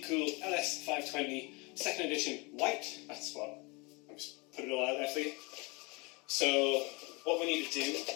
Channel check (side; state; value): right; quieter; 27.9 dB